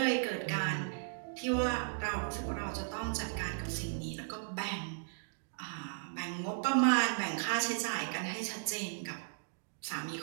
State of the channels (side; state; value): left; silent; digital silence